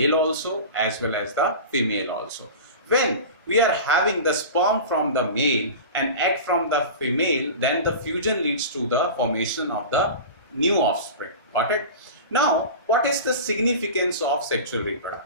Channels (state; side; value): inverted; both; correlation -0.32